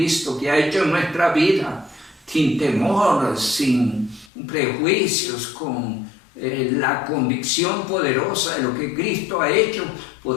que ha hecho en nuestra vida, sin temor, sin prejuicios, con la convicción poderosa de lo que Cristo ha hecho,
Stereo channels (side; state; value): right; drops out; at 4.3 s